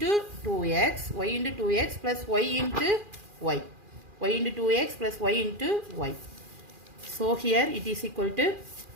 2x, y into 2x plus y into y, y into 2x plus y into y. So here it is equal to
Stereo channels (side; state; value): left; late; 2.4 ms